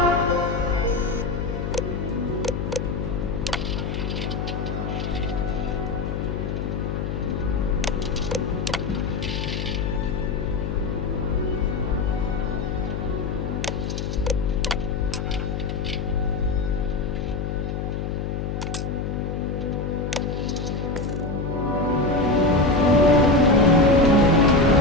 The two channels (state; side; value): noise; left; hum, 3 dB below the sound